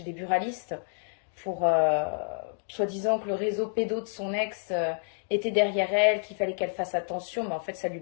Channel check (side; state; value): right; silent; digital silence